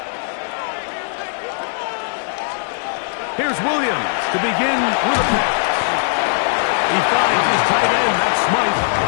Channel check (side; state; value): right; silent; digital silence